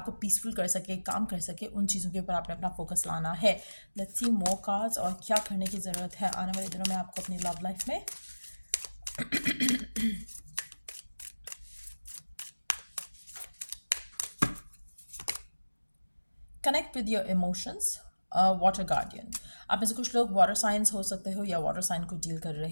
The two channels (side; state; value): both; inverted; correlation -1.00